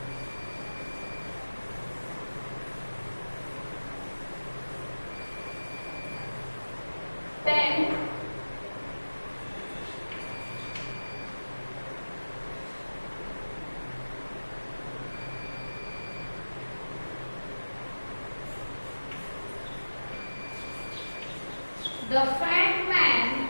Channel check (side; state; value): both; inverted; correlation -1.00